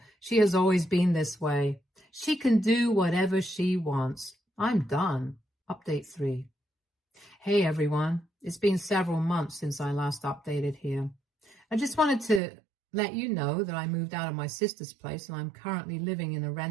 she has always been this way. She can do whatever she wants. I'm done. Update 3. Hey everyone, it's been several months since I last updated here. I just wanted to let you know that I moved out of my sister's place and I'm currently living in a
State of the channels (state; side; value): drops out; left; at 12.4 s